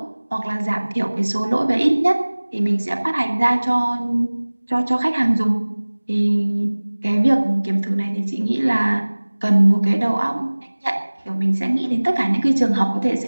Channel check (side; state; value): both; inverted; correlation -1.00